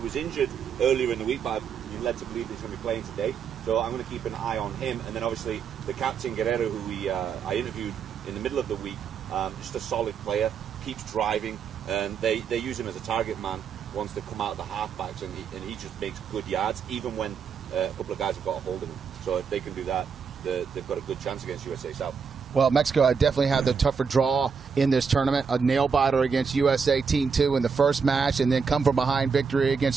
was injured earlier in the week, but you're led to believe he's going to be playing today. So I'm going to keep an eye on him. And then obviously the captain Guerrero, who I interviewed in the middle of the week, just a solid player, keeps driving, and they use him as a target man once they come out of the halfbacks, and he just makes good yards, even when a couple of guys have got a hold of him. So if they can do that, they've got a good chance against USA South. Well, Mexico definitely had the tougher draw in this tournament. A nail-biter against USA Team 2 in the first match, and then come from behind victory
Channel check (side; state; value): left; quieter; 6.0 dB